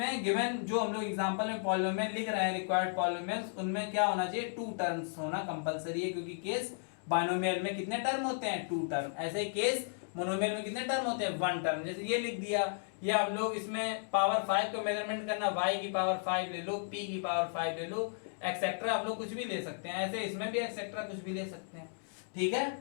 गिवन जो हम लोग एग्जांपल में पॉलिनोमियल लिख रहे हैं रिक्वायर्ड पॉलिनोमियल्स, उनमें क्या होना चाहिए, 2 टर्म्स होना कंपलसरी है, क्योंकि केस बाइनोमियल में कितने टर्म होते हैं, 2 टर्म। ऐसे ही केस मोनोमियल में कितने टर्म होते हैं, 1 टर्म। जैसे ये लिख दिया, या हम लोग इसमें पावर 5 को मेजरमेंट करना, y की पावर 5 ले लो, p की पावर 5 ले लो, एक्सेट्रा आप लोग कुछ भी ले सकते हैं। ऐसे इसमें भी एक्सेट्रा कुछ भी ले सकते हैं, ठीक है।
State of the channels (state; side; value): silent; right; digital silence